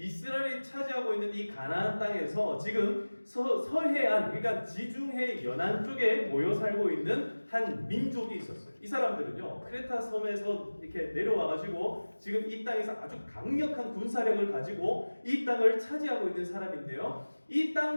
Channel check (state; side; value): inverted; both; correlation -1.00